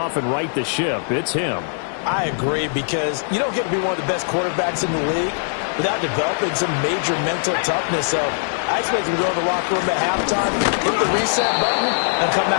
and right the ship, it's him. I agree, because you don't get to be one of the best quarterbacks in the league without developing some major mental toughness. So I expect him to go to the locker room at halftime, hit the reset button, and come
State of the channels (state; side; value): silent; right; digital silence